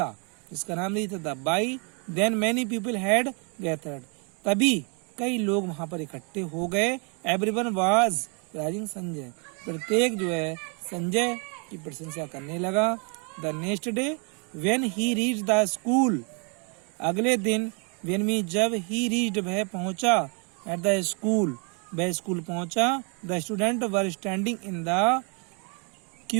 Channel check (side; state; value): left; quieter; 35.8 dB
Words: जिसका नाम रीता था। By then many people had gathered, तभी कई लोग वहां पर इकट्ठे हो गए। एवरीवन वाज प्राइजिंग संजय, प्रत्येक जो है संजय की प्रशंसा करने लगा। The next day when he reached the school, अगले दिन, व्हेन मी, जब ही रीच्ड, वह पहुंचा, एट द स्कूल, वह स्कूल पहुंचा। The student were standing in the